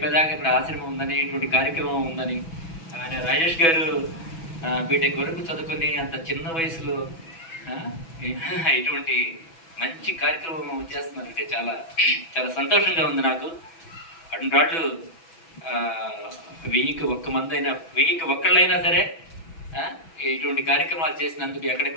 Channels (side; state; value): right; late; 6.1 ms